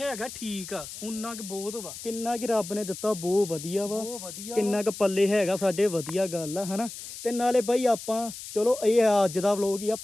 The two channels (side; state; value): left; noise; hiss, 11 dB below the sound